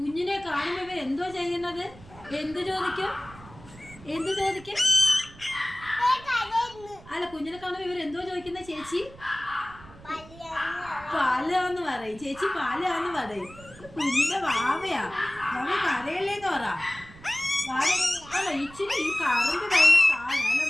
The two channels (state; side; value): noise; right; rumble, 20 dB below the sound